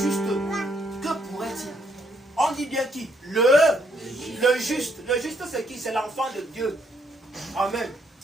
que pourrait-il? On dit bien qui? Le juste. Le juste, c'est qui? C'est l'enfant de Dieu. Amen.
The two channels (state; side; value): normal; both; correlation 0.72